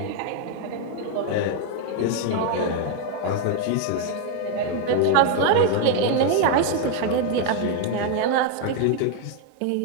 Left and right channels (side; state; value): both; different; correlation 0.00